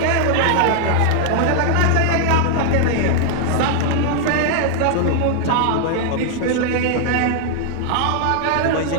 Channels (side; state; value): both; different; correlation 0.00